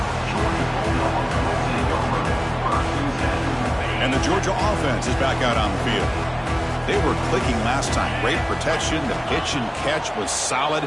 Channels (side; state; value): both; identical; correlation 1.00